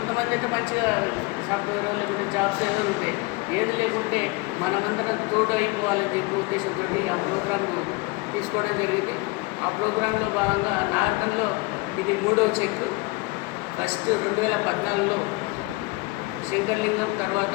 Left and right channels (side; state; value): right; quieter; 24.1 dB